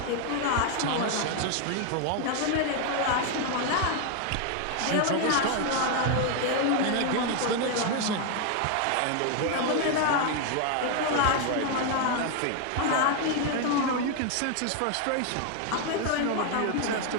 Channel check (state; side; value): different; both; correlation 0.01